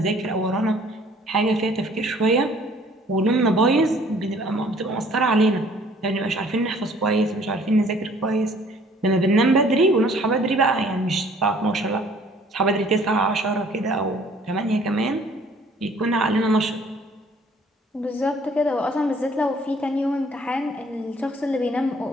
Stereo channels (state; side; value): normal; both; correlation 0.56